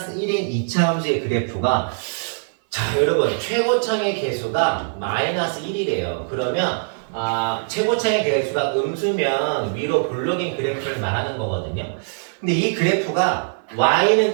1인 2차 함수의 그래프가 자 여러분 최고창의 개수가 마이너스 1이래요. 그러면 최고창의 개수가 음수면 위로 볼록인 그래프를 말하는 거거든요. 근데 이 그래프가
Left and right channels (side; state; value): left; silent; 57 dB below the other